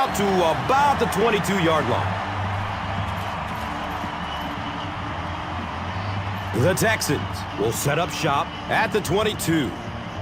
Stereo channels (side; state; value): both; identical; correlation 1.00